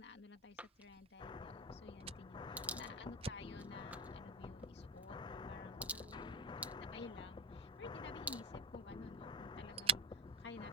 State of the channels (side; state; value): both; normal; correlation 0.18